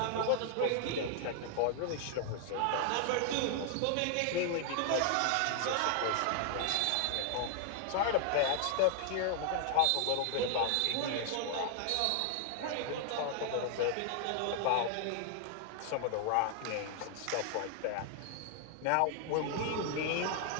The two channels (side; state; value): both; different; correlation 0.00